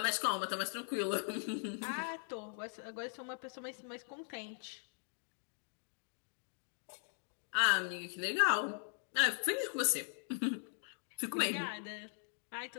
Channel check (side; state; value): right; silent; digital silence